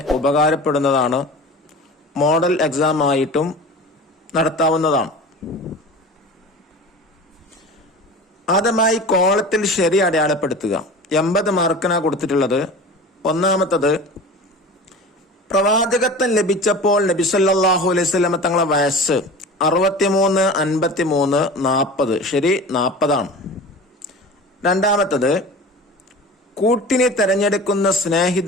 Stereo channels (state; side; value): normal; both; correlation 0.36